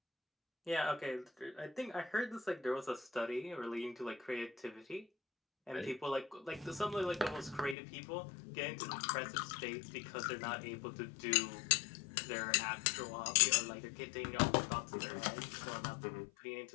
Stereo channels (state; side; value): drops out; right; at 7.8 s